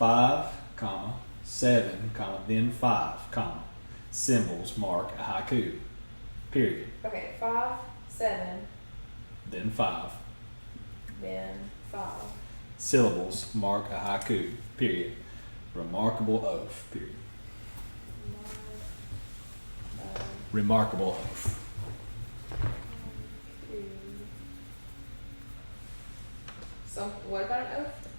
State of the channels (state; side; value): inverted; both; correlation -1.00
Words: comma, 7, comma, then 5, comma, symbols mark a haiku, period. Okay, 5, 7, Then 5, then 5. syllables mark a haiku, period. Remarkable oath, period. Remarkable oath. What about an oath?